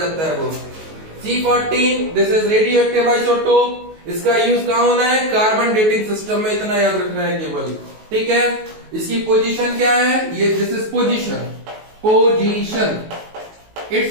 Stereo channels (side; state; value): left; late; 19 ms